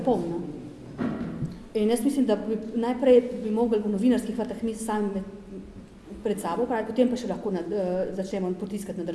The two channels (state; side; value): identical; both; correlation 1.00